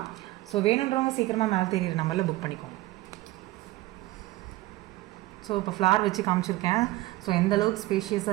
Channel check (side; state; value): left; quieter; 17.9 dB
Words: ஸோ வேணுன்றவங்க சீக்கிரமாக மேலே தெரியுற நம்பரில் புக் பண்ணிக்கோங்க. ஸோ இப்போ ஃப்ளார் வச்சு காமிச்சிருக்கேன். ஸோ எந்த அளவுக்கு